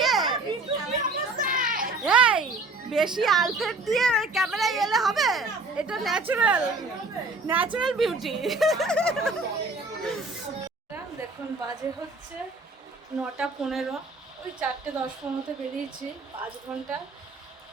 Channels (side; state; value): left; quieter; 3.3 dB